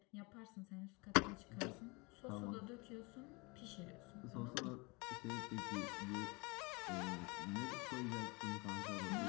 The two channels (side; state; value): right; quieter; 27.4 dB